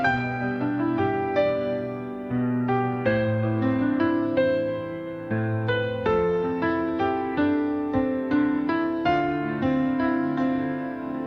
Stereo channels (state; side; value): identical; both; correlation 1.00